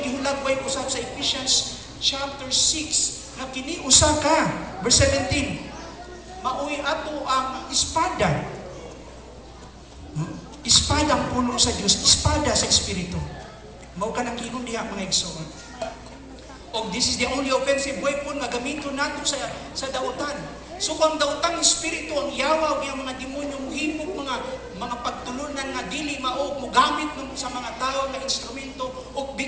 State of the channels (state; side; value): identical; both; correlation 1.00